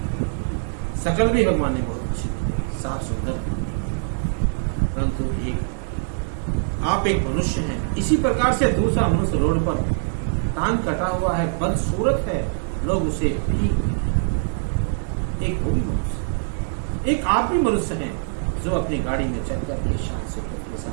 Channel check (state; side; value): silent; left; digital silence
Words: शकल भी भगवान ने बहुत अच्छी साफ सुंदर, परंतु आप एक मनुष्य हैं। इसी प्रकार से दूसरा मनुष्य रोड पर टांग कटा हुआ है, बदसूरत है, लोग उसे भी एक वो भी मनुष्य, एक आप भी मनुष्य हैं जो अपनी गाड़ी में चल करके शान से के